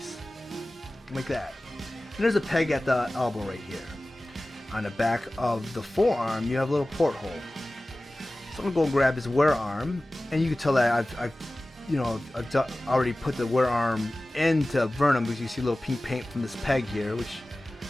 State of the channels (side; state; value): both; normal; correlation 0.97